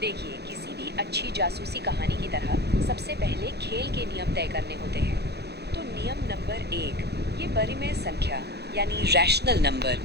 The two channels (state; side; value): late; left; 0.48 ms